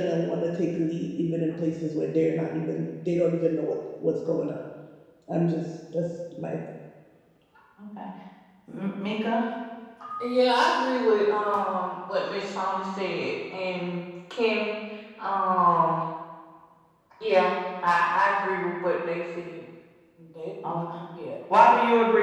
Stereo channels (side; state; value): both; identical; correlation 1.00